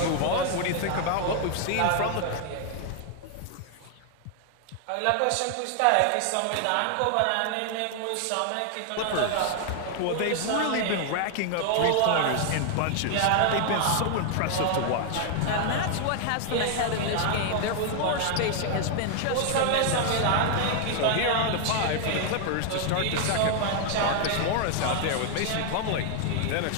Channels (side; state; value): both; different; correlation 0.00